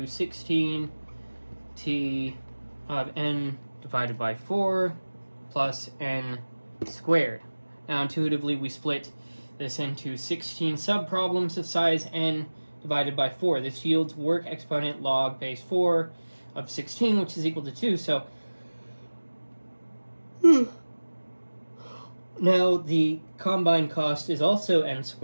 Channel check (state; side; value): inverted; both; correlation -1.00